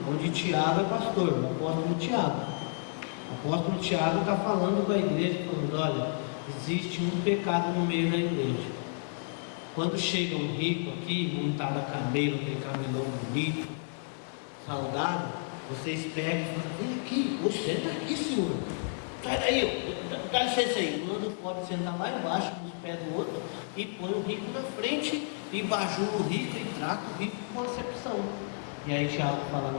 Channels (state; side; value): silent; right; digital silence